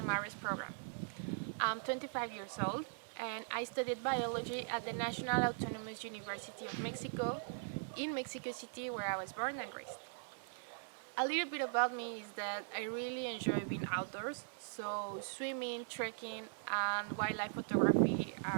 MARRES program. I'm 25 years old and I studied biology at the National Autonomous University of Mexico in Mexico City, where I was born and raised. A little bit about me is that I really enjoy being outdoors, so swimming, trekking and wildlife photography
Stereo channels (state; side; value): silent; left; digital silence